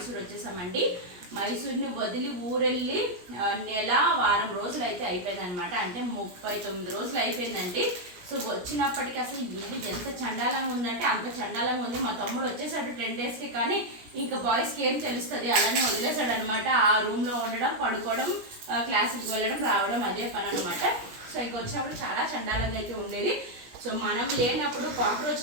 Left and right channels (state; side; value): late; left; 17 ms